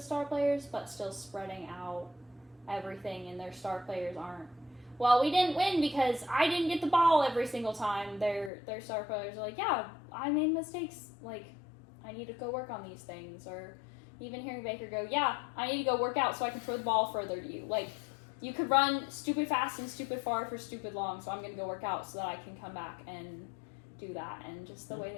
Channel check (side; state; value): right; drops out; at 8.5 s